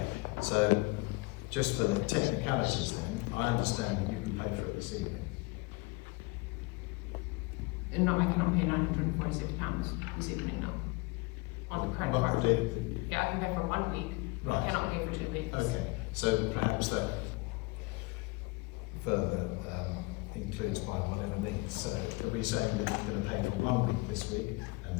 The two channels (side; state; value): right; quieter; 25.6 dB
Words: so just for the technicalities then, I understand that you can pay for it this evening. And no, I cannot pay £946 this evening, no. On the credit card. Yeah, I can pay for 1 week. Right. I cannot pay for 2 weeks. Okay, so perhaps that further includes by whatever means. So are we saying that you're going to pay for 1 week this week and